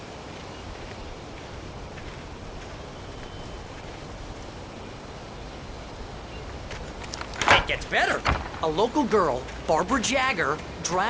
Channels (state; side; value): identical; both; correlation 1.00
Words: Gets better. A local girl, Barbara Jagger,